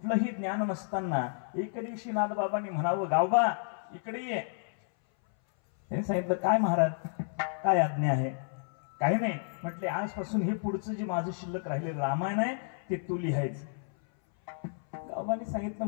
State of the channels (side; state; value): right; silent; 57 dB below the other